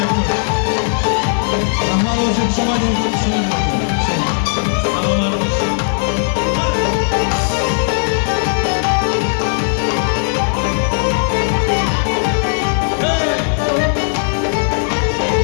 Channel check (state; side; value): silent; right; 64 dB below the other